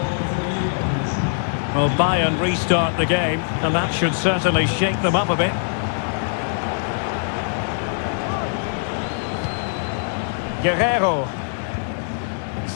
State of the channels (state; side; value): silent; right; digital silence